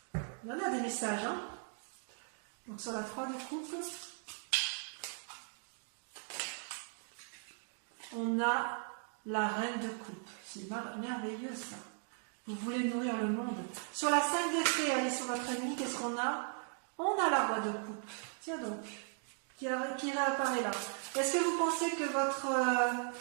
Il y en a des messages, hein. Donc sur la 3 de coupe, on a la reine de coupe. C'est merveilleux ça. Vous voulez nourrir le monde. Sur la 5 d'épée, allez sur votre ennemi, qu'est-ce qu'on a? On a la roi de coupe. Tiens donc, qui réapparaît là. Est-ce que vous pensez que votre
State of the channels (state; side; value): silent; left; 53 dB below the other